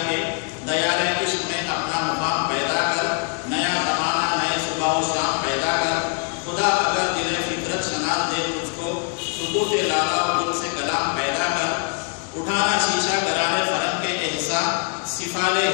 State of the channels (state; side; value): quieter; right; 38.0 dB